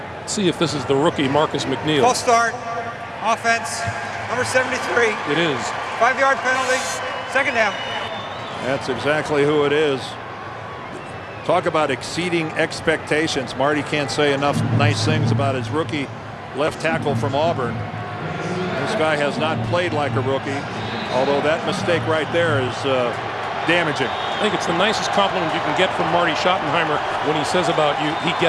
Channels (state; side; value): identical; both; correlation 1.00